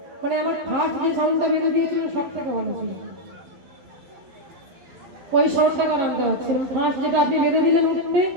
মানে আমার ফার্স্ট যে সাউন্ডটা বেঁধে দিয়েছিল সব থেকে ভালো ছিল, ওই সাউন্ডটা আর আনতে হচ্ছে না। ফার্স্ট যেটা আপনি বেঁধে দিলেন উঠতে,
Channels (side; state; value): left; late; 12 ms